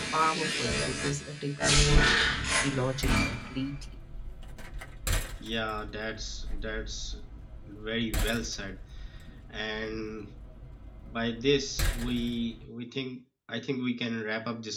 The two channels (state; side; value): identical; both; correlation 1.00